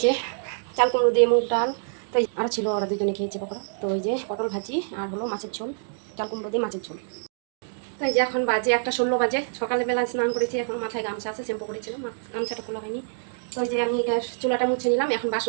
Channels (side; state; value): left; silent; digital silence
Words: যে চাল কুমড়ো দিয়ে মুগ ডাল, তো আরও ছিল, ওরা দুজনে খেয়েছে পকোড়া। তো ওই যে পটল ভাজি আর হলো মাছের ঝোল, চাল কুমড়ো দিয়ে মাছের ঝোল। তো এই যে এখন বাজে 1:16 বাজে, সকালবেলা স্নান করেছি, এখন মাথায় গামছা আছে, শ্যাম্পু করেছিলাম, গামছাটা খোলা হয়নি। তো ওই যে আমি চুলাটা মুছে নিলাম, এখন